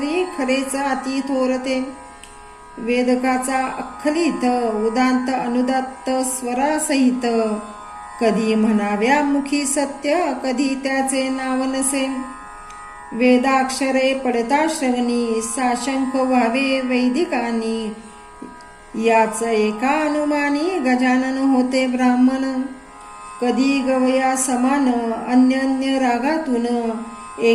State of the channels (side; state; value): both; identical; correlation 1.00